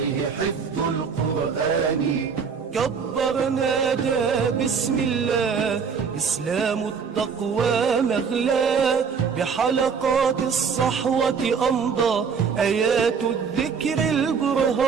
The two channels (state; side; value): quieter; left; 6.1 dB